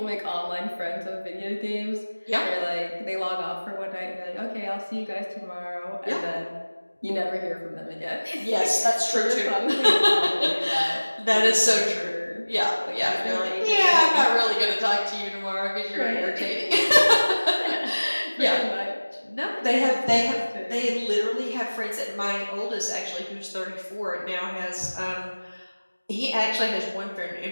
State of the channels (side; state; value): both; inverted; correlation -1.00